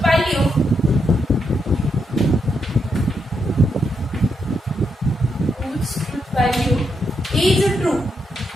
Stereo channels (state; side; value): normal; both; correlation 0.81